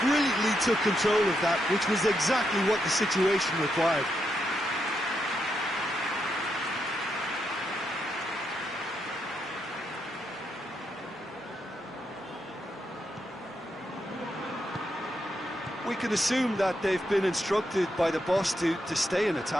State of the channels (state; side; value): normal; both; correlation 0.82